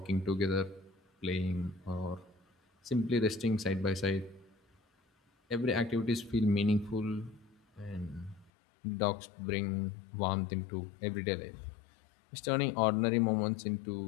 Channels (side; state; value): right; drops out; at 8.5 s